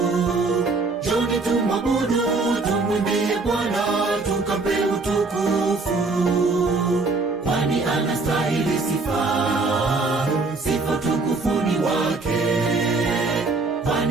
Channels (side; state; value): left; quieter; 3.7 dB